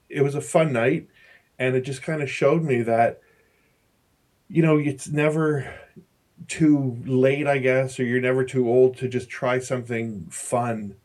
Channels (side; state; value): both; identical; correlation 1.00